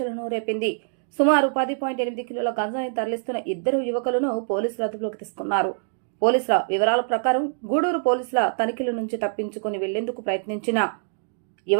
రేపింది. సుమారు 10.8 కిలోల గంజాయి తరలిస్తున్న ఇద్దరు యువకులను పోలీసులు అదుపులోకి తీసుకున్నారు. పోలీసుల వివరాల ప్రకారం గూడూరు పోలీసుల తనిఖీల నుంచి తప్పించుకుని వెళ్లేందుకు ప్రయత్నించిన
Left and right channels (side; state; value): left; silent; 62 dB below the other